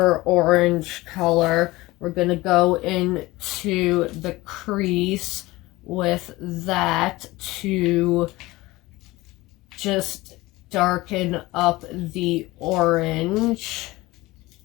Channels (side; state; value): right; quieter; 19.8 dB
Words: orange color. We're gonna go into the crease with that to just darken up the orange.